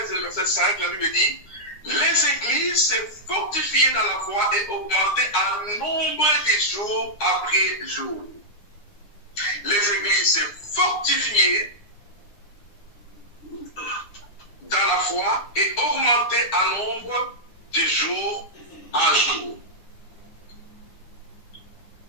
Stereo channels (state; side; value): late; right; 9.8 ms